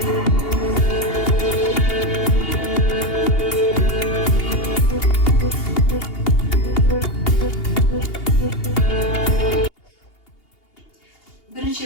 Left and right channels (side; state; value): right; late; 2.8 ms